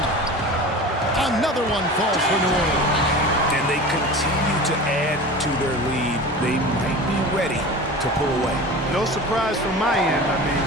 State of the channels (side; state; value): both; normal; correlation 0.34